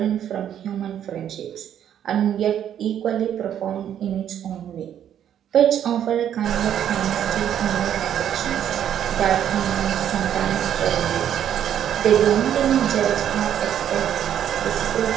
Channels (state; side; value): quieter; left; 10.0 dB